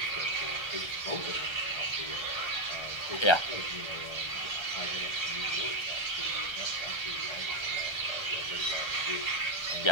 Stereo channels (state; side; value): late; right; 1.3 ms